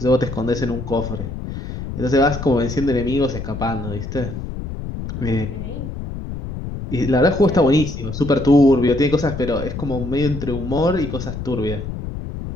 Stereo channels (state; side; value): noise; left; rumble, 7 dB below the sound